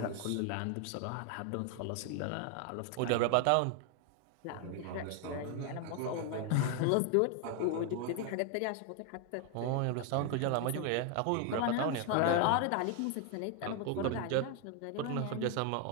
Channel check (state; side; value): different; both; correlation 0.01